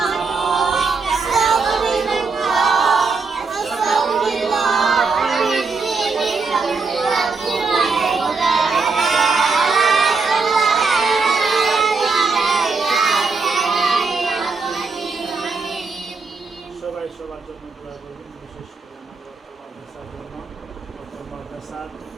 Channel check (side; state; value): left; quieter; 4.5 dB